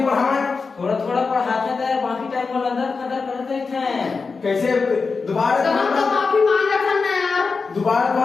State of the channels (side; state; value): right; quieter; 4.6 dB